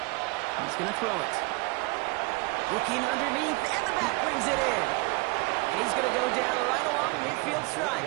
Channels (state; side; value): quieter; left; 26.3 dB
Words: He's going to throw it. Looking underneath, and the back brings it in. And he's going to go down right along the midfield